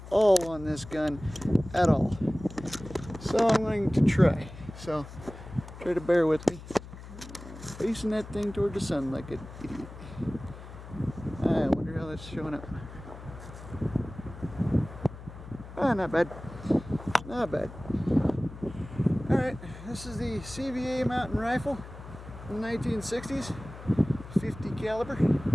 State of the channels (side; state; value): left; noise; hum, 14 dB below the sound